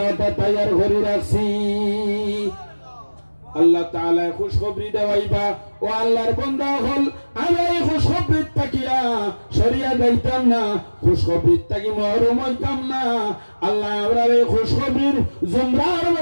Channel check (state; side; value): inverted; both; correlation -1.00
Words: তৈয়ার করে রাখছি। আল্লাহ তাআলা খুশখবরি দেওয়াইবা ও আল্লাহর বান্দা হল। আমি এই খুশখবরির তাকিয়া সরিয়া যাইতাম না, খুশখবরির তাকি মহরুম হইতাম না। আল্লাহ আমরা এই খুশখবরির জুমরার